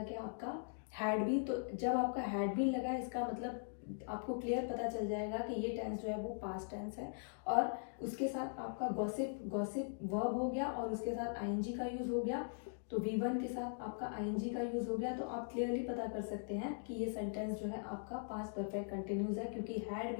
कि आपका हैड बीन। तो जब आपका हैड बीन लगा है, इसका मतलब आपको क्लियर पता चल जाएगा कि ये टेंस जो है वो पास्ट टेंस है, और उसके साथ आपका गॉसिप, गॉसिप वर्ब हो गया और उसके साथ आईएनजी का यूज हो गया, तो V1 के साथ आपका आईएनजी का यूज हो गया। तो आप क्लियरली पता कर सकते हैं कि ये सेंटेंस जो है आपका पास्ट परफेक्ट कंटिन्यूज है, क्योंकि हैड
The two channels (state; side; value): silent; right; digital silence